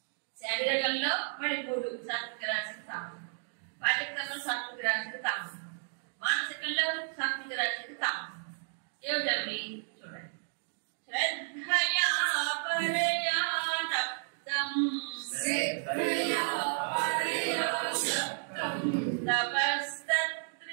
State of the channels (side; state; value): left; silent; digital silence